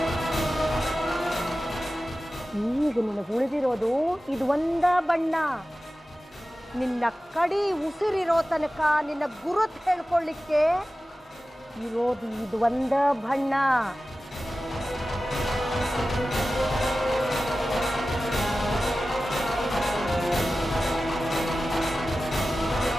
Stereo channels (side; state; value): both; normal; correlation 0.95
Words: ಈಗ ನಿನಗೆ ಉಳಿದಿರೋದು ಇದು ಒಂದ ಬಣ್ಣ. ನಿನ್ನ ಕಡಿ ಉಸಿರಿರೋ ತನಕ ನಿನ್ನ ಗುರುತ್ ಹೇಳ್ಕೊಳ್ಳಿಕ್ಕೆ ಇರೋದು ಇದು ಒಂದ ಬಣ್ಣ.